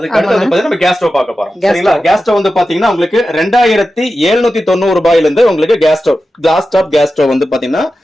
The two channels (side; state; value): both; normal; correlation 0.92